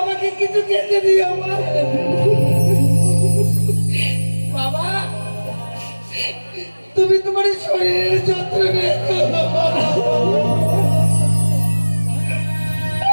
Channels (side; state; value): both; inverted; correlation -1.00